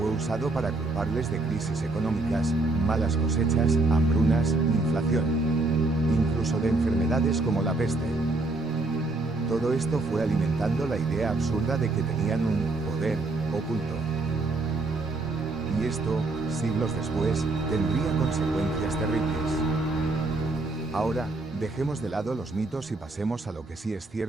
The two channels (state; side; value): quieter; left; 3.2 dB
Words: usado para culparles de crisis económicas, malas cosechas, hambrunas, inflación. Incluso de enfermedades como la peste. Todo esto fue alimentando la idea absurda de que tenían un poder oculto. Y esto, siglos después, tendría consecuencias terribles. Ahora, dejemos de lado los mitos y pasemos a lo que sí es